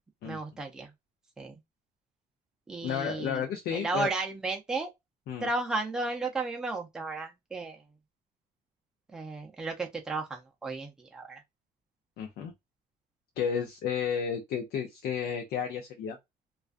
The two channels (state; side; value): normal; both; correlation 0.48